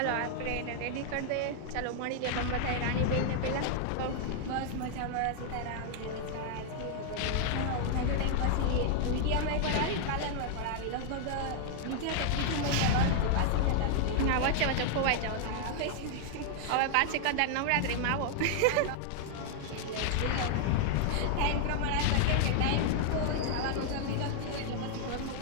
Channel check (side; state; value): both; different; correlation 0.00